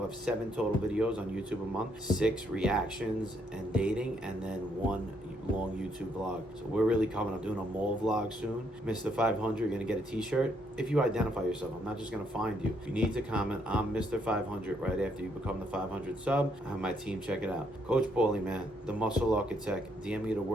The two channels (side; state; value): both; normal; correlation 0.72